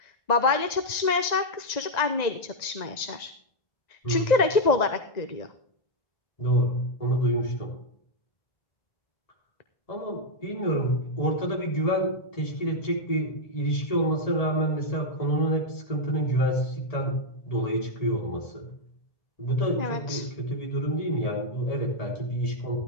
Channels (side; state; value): right; late; 1.9 ms